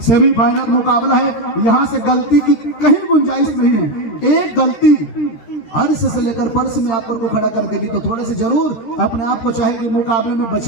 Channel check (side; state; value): right; late; 13 ms